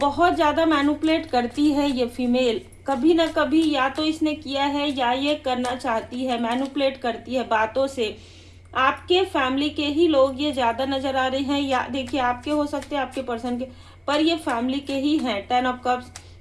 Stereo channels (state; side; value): identical; both; correlation 1.00